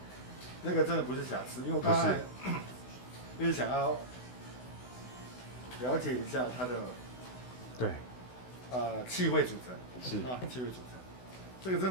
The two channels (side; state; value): right; late; 16 ms